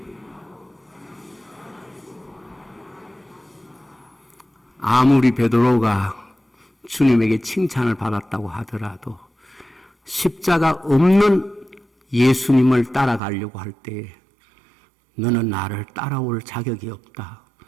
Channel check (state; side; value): drops out; left; at 13.2 s